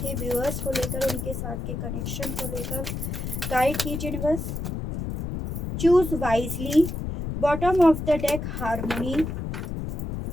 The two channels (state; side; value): noise; left; rumble, 4 dB below the sound